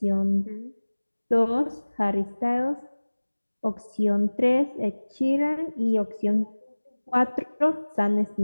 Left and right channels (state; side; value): inverted; both; correlation -1.00